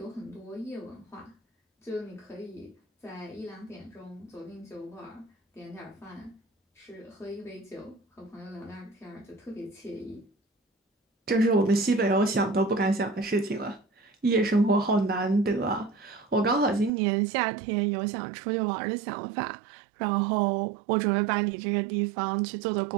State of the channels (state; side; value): drops out; left; at 16.9 s